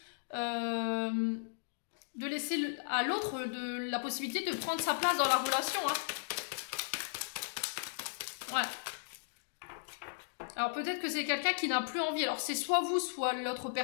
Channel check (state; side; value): silent; right; digital silence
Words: de laisser à l'autre la possibilité de prendre sa place dans la relation. Hein. Ouais. Alors peut-être que c'est quelqu'un qui n'a plus envie. Alors c'est soit vous, soit l'autre